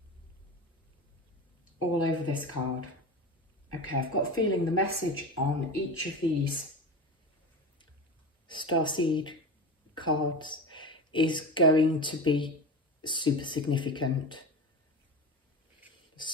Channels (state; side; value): normal; both; correlation 0.28